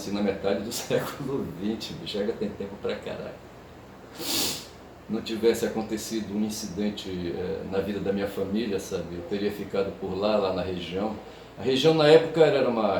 na metade do século XX, bicho, já tem tempo pra caralho. Não tivesse acontecido um incidente na vida da minha família, sabe? Eu teria ficado por lá na região. A região na época era uma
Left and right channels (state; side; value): identical; both; correlation 1.00